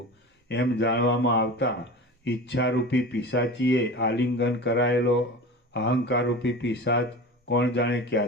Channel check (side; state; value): both; normal; correlation 0.32